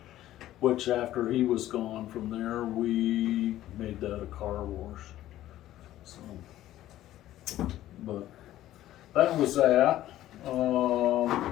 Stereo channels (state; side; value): quieter; right; 13.9 dB